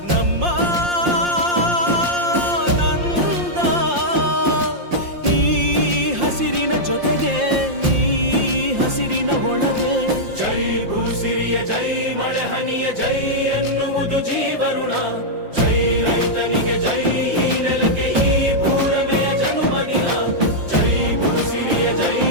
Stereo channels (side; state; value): left; late; 5.7 ms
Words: ನಮ್ಮ ನಂದ ಈ ಹಸಿರಿನ ಜೊತೆಗೆ ಈ ಹಸಿರಿನ ಒಳಗೆ ಜೈ ಭೂಸಿರಿಯ ಜೈ ಮಳೆ ಹನಿಯ ಜೈ ಎನ್ನುವುದು ಜೀವರುಣ ಜೈ ರೈತನಿಗೆ ಜೈ ಈ ನೆಲಕ್ಕೆ ಈ ಪೂರಮೆಯ ಜನುಮದಿನ ಜೈ ಭೂಸಿರಿಯ ಜೈ